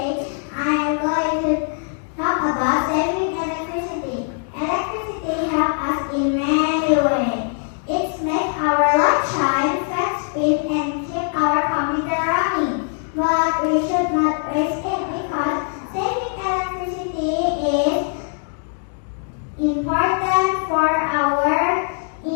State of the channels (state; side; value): silent; right; 56 dB below the other